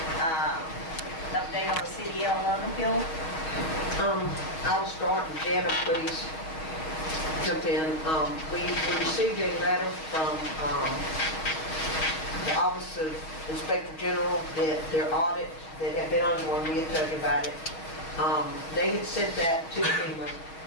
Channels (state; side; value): late; right; 6.3 ms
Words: update on the CDL loan appeal? I'll start, and Jana, please jump in. We received a letter from the Office of Inspector General that their audit that had been ongoing, we had told you about it. They had sent that to FEMA,